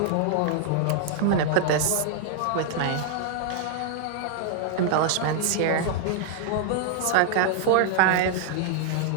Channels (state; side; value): different; both; correlation 0.00